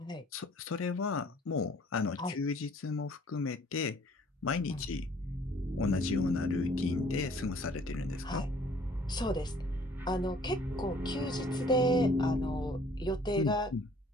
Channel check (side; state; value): both; normal; correlation 0.56